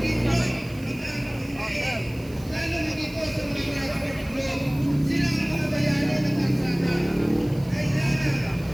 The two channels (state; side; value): noise; right; hiss, 23 dB below the sound